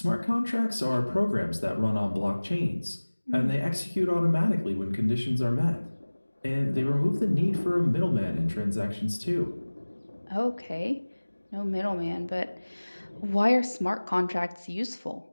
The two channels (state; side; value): inverted; both; correlation -1.00